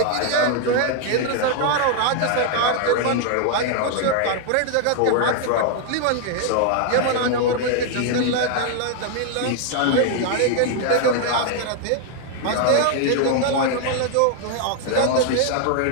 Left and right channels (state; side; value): different; both; correlation 0.00